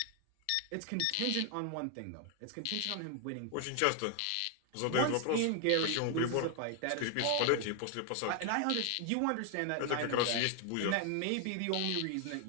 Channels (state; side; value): different; both; correlation 0.00